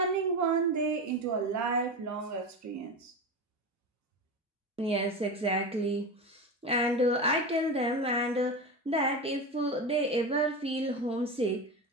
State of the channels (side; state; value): both; normal; correlation 0.23